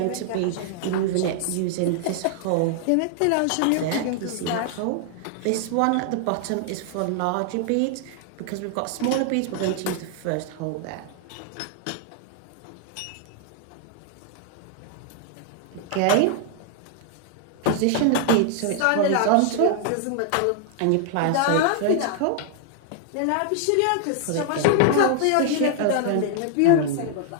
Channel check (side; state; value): both; different; correlation -0.01